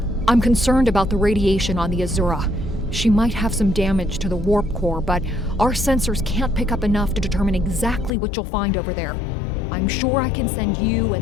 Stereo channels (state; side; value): drops out; right; at 8.1 s